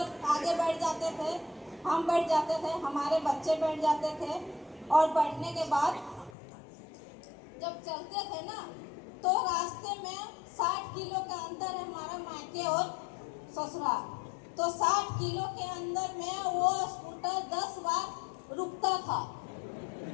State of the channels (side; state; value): right; drops out; at 6.3 s